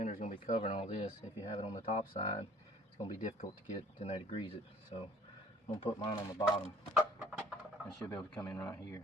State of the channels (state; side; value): normal; both; correlation 0.54